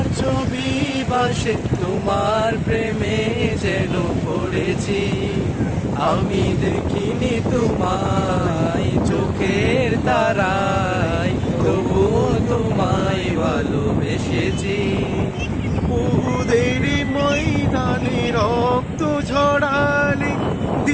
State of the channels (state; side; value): identical; both; correlation 1.00